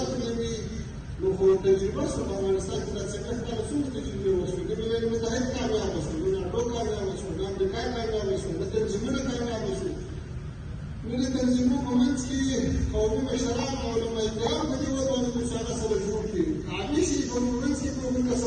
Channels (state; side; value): identical; both; correlation 1.00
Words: نه وي، نو خو تجربه شوه په افغانستان کې دا څنګه کله څومره تجربې وشوې، د ملل متحد کامیابه شو، د ناټو کامیابه شو، د امریکا کامیابه شو، د تنظیمونه کامیابه شو. نو د تنظیمونو په منځ کې قومي مشران او علماء کرام په دې ودانو کې هغه سره جوړ کړي، عامي شي په منځ کې په موږ